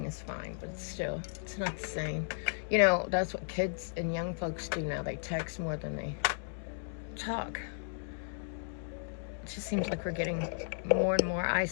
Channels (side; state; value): right; silent; digital silence